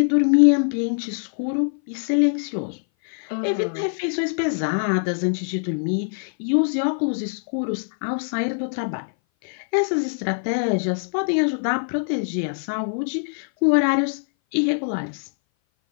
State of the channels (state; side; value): silent; right; 59 dB below the other